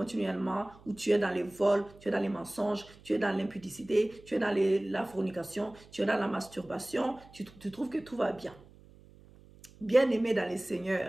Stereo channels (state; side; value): noise; right; hum, 24 dB below the sound